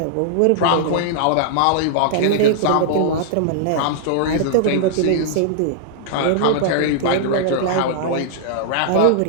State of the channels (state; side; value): different; both; correlation -0.01